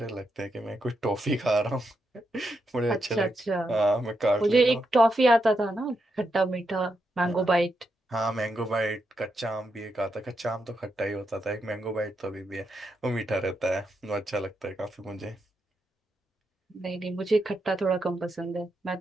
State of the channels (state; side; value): normal; both; correlation 0.83